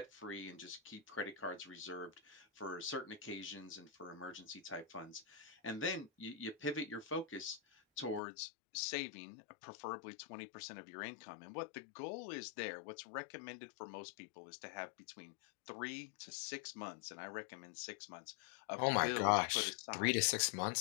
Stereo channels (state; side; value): drops out; right; at 8.2 s